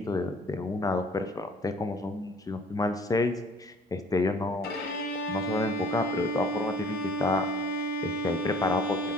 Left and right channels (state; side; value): normal; both; correlation 0.53